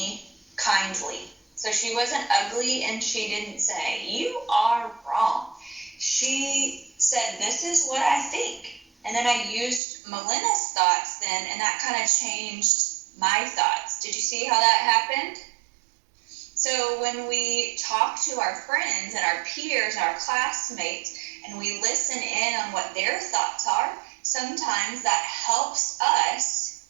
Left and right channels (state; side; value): drops out; left; at 9.8 s